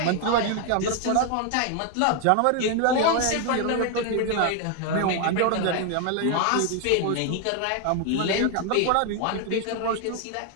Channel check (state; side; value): different; both; correlation 0.01